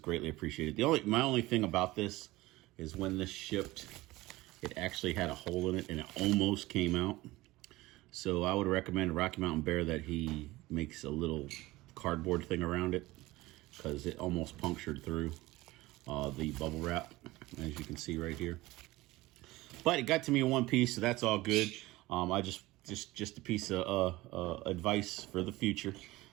appreciated. My only thing about this is when this shipped, it actually had a hole in it and it almost came out. So I would recommend Rocky Mountain Bear that he makes a little cardboard thing around it, because it almost punctured through the bubble wrap, as you can see right here. But it got to me in one piece, so that's all good. I just a piece of advice for the future.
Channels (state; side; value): quieter; left; 19.3 dB